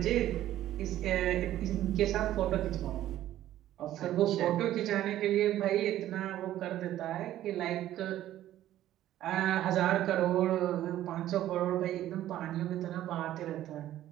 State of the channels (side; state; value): left; quieter; 13.2 dB